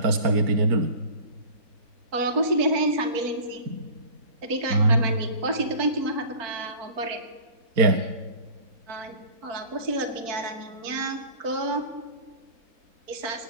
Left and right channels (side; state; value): left; late; 4.5 ms